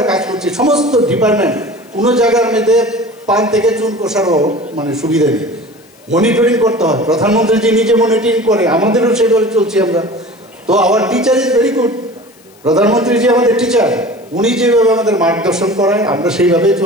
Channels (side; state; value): left; noise; hiss, 29 dB below the sound